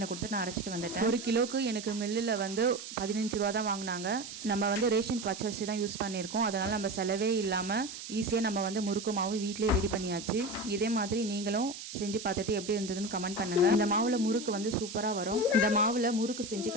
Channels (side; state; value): right; noise; hiss, 10 dB below the sound